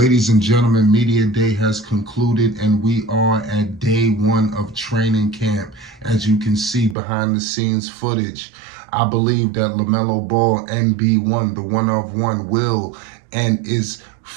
and gentlemen, Media Day has concluded and we are at day one of training camp. As you can see behind the scenes footage, I believe that Lamelo Ball, NB1, the one of one, will and is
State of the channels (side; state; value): left; drops out; at 7.0 s